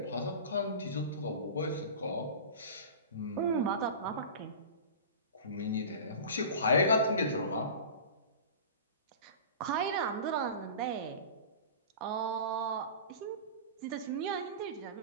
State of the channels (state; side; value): inverted; both; correlation -0.33